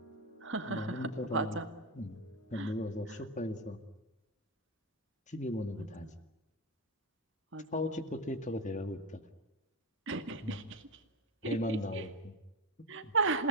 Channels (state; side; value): normal; both; correlation 0.13